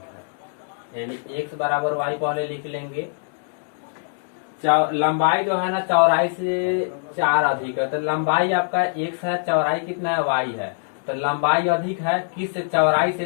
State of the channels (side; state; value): right; silent; digital silence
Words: है, यानी x बराबर y पहले लिख लेंगे। लंबाई जो है ना चौड़ाई से 4 अधिक है, तो लंबाई आपका x है, चौड़ाई कितना है y है, तो लंबाई अधिक है किस से, चौड़ाई से,